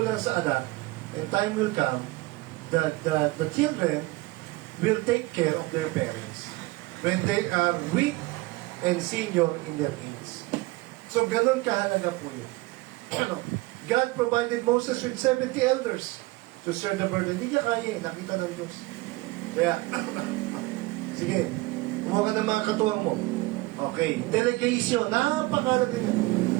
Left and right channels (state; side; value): quieter; left; 21.6 dB